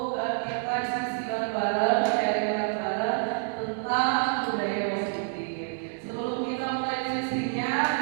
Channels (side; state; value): left; silent; 59 dB below the other